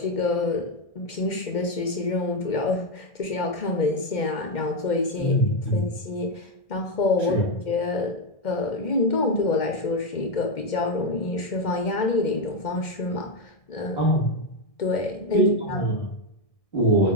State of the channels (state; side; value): late; right; 2.1 ms